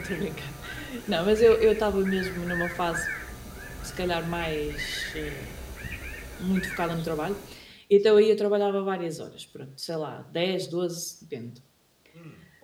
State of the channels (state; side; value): identical; both; correlation 1.00